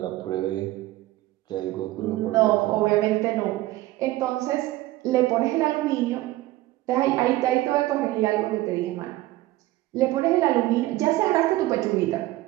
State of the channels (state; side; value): quieter; left; 17.2 dB